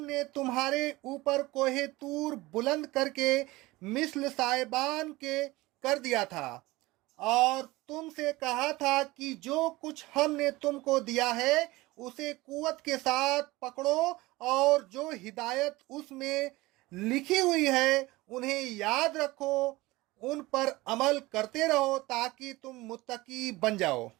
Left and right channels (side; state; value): left; quieter; 20.3 dB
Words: نے تمہارے اوپر کوہ طور بلند کر کے مثل سائبان کے کر دیا تھا، اور تم سے کہا تھا کہ جو کچھ ہم نے تم کو دیا ہے اسے قوت کے ساتھ پکڑو، اور جو ہدایت اس میں لکھی ہوئی ہے انہیں یاد رکھو، ان پر عمل کرتے رہو تاکہ تم متقی بن جاؤ۔